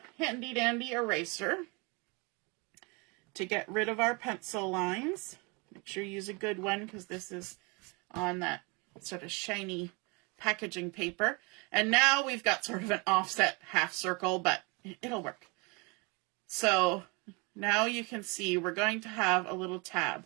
handy dandy eraser to get rid of our pencil lines. Make sure you use a good one because this is on that sort of shiny packaging paper. And now we've got sort of an offset half circle, but it'll work. So now you can see we're going to have a little tab.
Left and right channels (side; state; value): left; quieter; 29.6 dB